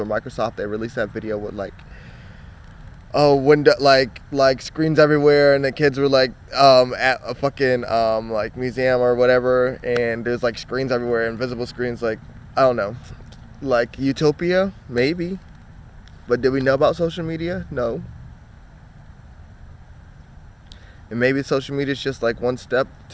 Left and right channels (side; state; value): both; identical; correlation 1.00